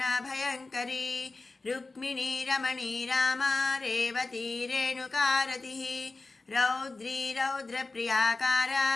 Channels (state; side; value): quieter; right; 3.5 dB